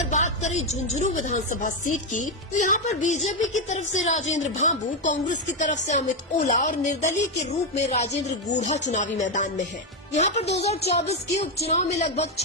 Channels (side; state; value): both; normal; correlation 0.06